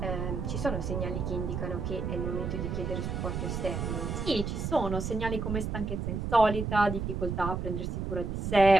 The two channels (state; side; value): noise; right; rumble, 3 dB below the sound